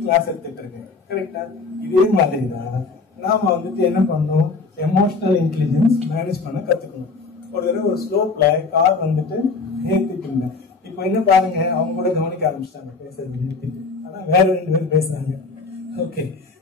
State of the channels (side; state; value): right; quieter; 4.2 dB